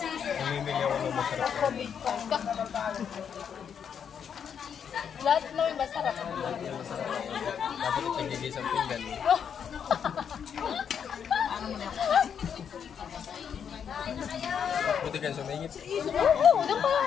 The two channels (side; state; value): right; quieter; 7.7 dB